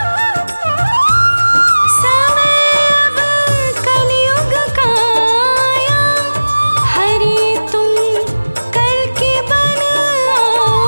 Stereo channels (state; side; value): inverted; both; correlation -1.00